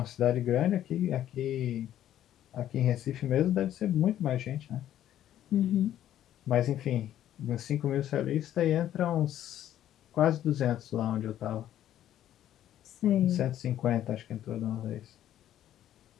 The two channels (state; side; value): quieter; right; 11.7 dB